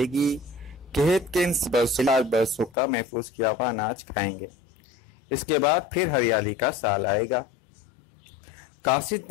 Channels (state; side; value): drops out; right; at 2.8 s